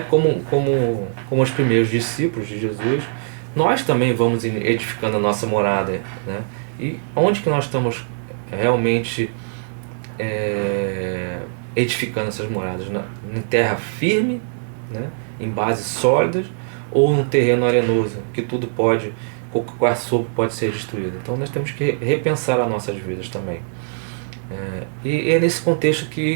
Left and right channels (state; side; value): silent; left; digital silence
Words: como os primeiros discípulos de Jesus, nós também vamos edificando a nossa morada, né? E onde que nós estamos realmente edificando essas moradas? Em terra firme, né? Em bases sólidas, ou num terreno arenoso, que tudo pode, qualquer sopro pode ser destruído. Então nós temos que repensar as nossas vidas também. E é nesse contexto